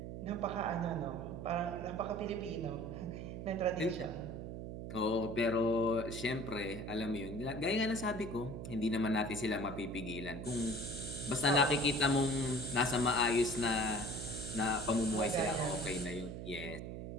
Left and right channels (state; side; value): noise; right; hum, 7 dB below the sound